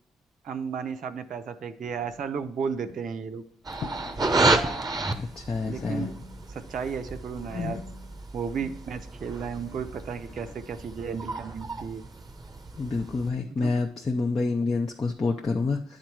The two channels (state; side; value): normal; both; correlation 0.72